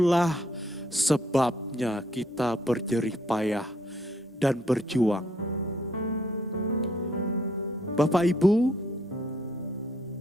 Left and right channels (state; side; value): normal; both; correlation 0.67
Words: sebabnya kita berjerih payah dan berjuang. Bapak Ibu,